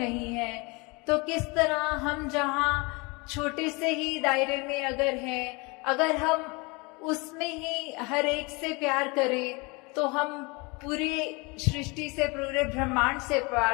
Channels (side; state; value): right; quieter; 27.7 dB